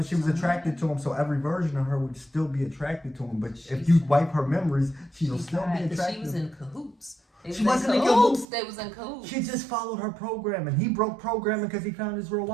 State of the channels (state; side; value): drops out; left; at 8.5 s